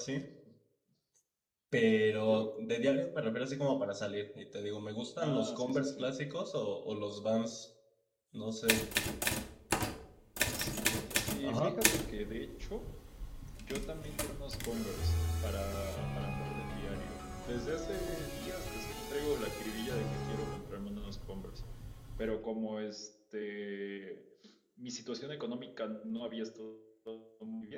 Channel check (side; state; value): both; identical; correlation 1.00